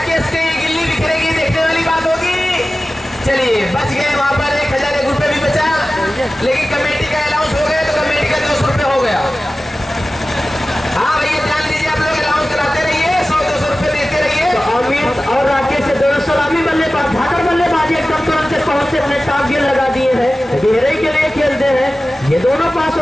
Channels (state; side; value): normal; both; correlation 0.96